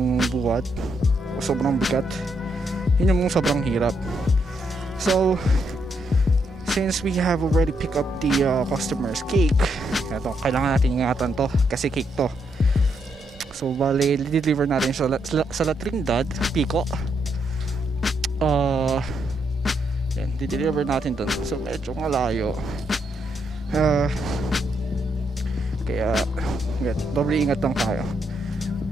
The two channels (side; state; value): both; normal; correlation 0.78